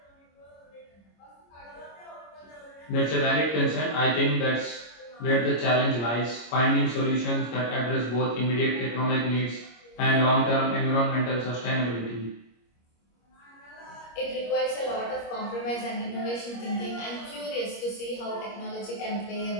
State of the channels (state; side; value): late; right; 25 ms